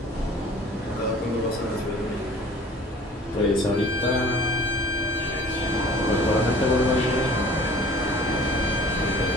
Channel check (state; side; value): normal; both; correlation 0.48